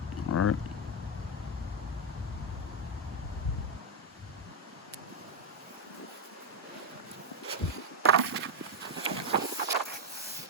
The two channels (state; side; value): normal; both; correlation 0.06